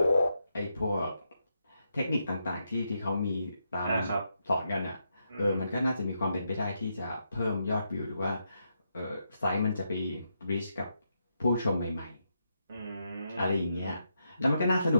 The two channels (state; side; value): inverted; both; correlation -0.82